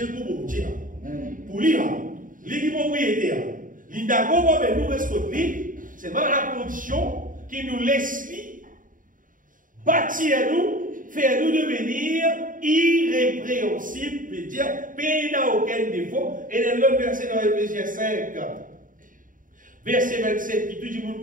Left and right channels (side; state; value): left; late; 0.39 ms